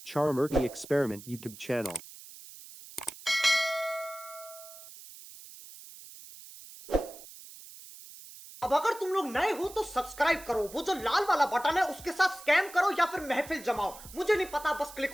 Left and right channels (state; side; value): noise; right; hiss, 17 dB below the sound